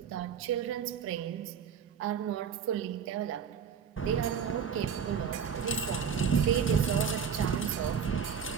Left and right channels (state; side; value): quieter; left; 7.2 dB